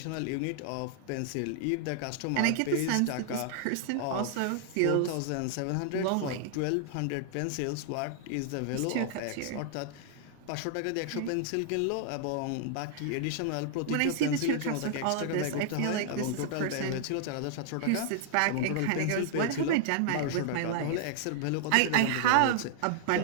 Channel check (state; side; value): different; both; correlation 0.00